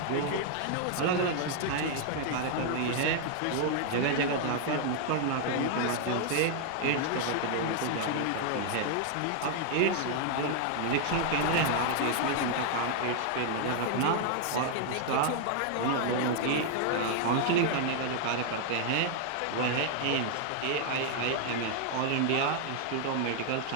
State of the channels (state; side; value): different; both; correlation 0.00